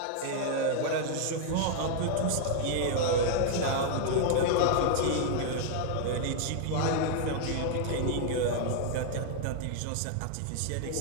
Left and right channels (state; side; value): different; both; correlation 0.00